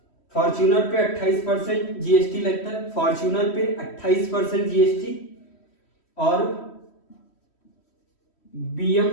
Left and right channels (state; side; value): late; right; 3.1 ms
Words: फॉर्च्यूनर पे 28% जीएसटी लगता है, फॉर्च्यूनर पे 28% जीएसटी और